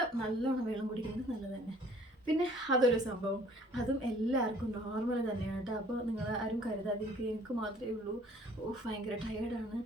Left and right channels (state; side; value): normal; both; correlation 0.55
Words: നല്ലോണം വെള്ളം കുടിക്കുന്നത് നല്ലത് തന്നെ. പിന്നെ അതൊരു സംഭവം, അതും എല്ലാവർക്കും നോർമൽ തന്നെയാണ് കേട്ടോ. അപ്പോൾ നിങ്ങൾ ആരും കരുതാതിരിക്കുക എനിക്ക് മാത്രമേ ഉള്ളൂ, ഭയങ്കര ടയേർഡാണ്,